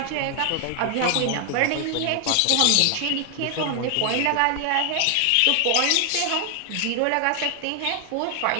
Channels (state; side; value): different; both; correlation 0.00